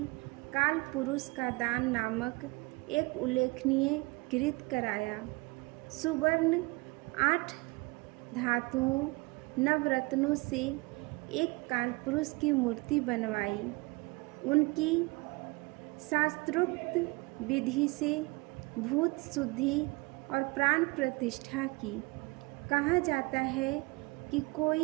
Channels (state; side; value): quieter; left; 25.7 dB